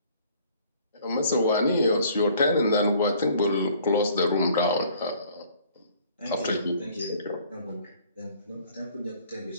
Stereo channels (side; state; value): both; inverted; correlation -0.57